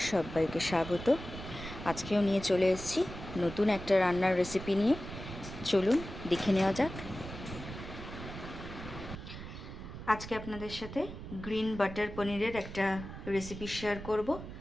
সবাইকে স্বাগত। আজকেও নিয়ে চলে এসেছি নতুন একটা রান্নার রেসিপি নিয়ে। চলুন দেখে নেওয়া যাক। আজকে আপনাদের সাথে গ্রিন বাটার পনিরের একটা রেসিপি শেয়ার করব।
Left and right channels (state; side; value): noise; right; rumble, 11 dB below the sound